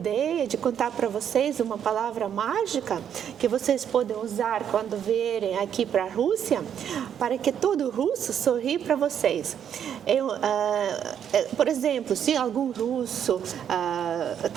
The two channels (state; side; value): quieter; left; 8.9 dB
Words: de contar para vocês uma palavra mágica que vocês podem usar quando vierem aqui para a Rússia, para que todo russo sorri para vocês. Por exemplo, se algum russo